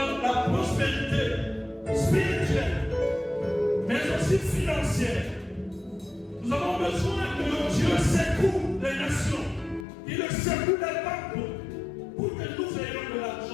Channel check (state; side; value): drops out; right; at 9.9 s